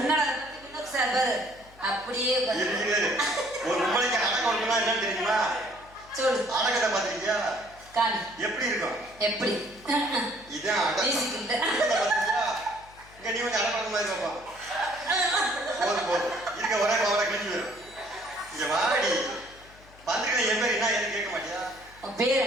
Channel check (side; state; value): left; noise; hum, 24 dB below the sound